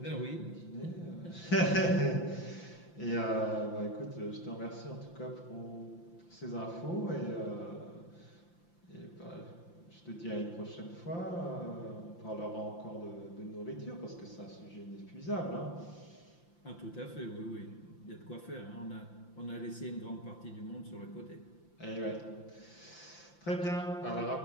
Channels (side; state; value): right; late; 5.8 ms